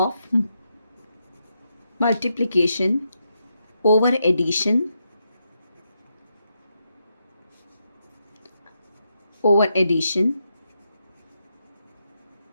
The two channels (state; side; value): inverted; both; correlation -0.83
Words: multiplication over addition